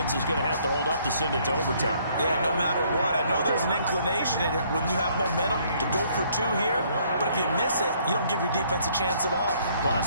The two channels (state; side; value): inverted; both; correlation -0.64